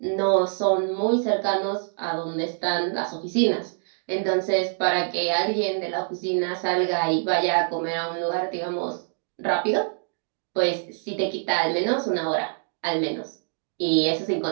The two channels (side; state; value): left; silent; digital silence